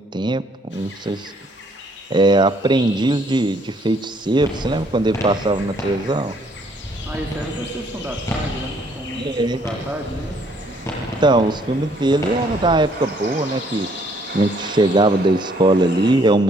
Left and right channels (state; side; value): normal; both; correlation 0.65